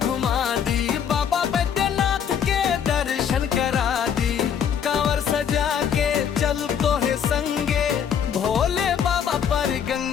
दी। बाबा बैद्यनाथ के दर्शन करा दी, कांवर सजा के चल तो है संगे, भोले बाबा पर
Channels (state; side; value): quieter; right; 8.1 dB